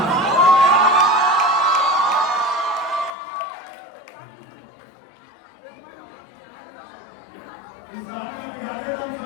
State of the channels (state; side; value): drops out; right; at 3.1 s